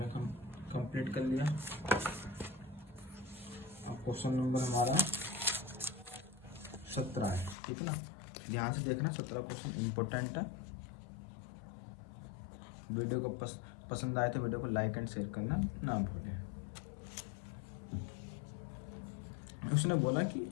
कंप्लीट कर लिया। अब क्वेश्चन नंबर हमारा 17 है, ठीक है ना। ध्यान से देखना 17 क्वेश्चन इम्पोर्टेंट है। वीडियो को पसंद आए तो वीडियो को लाइक एंड शेयर करना ना भूलें। उसने बोला कि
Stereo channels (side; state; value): right; drops out; at 7.6 s